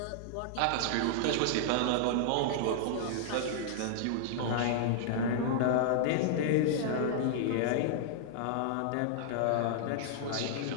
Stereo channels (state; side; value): different; both; correlation -0.01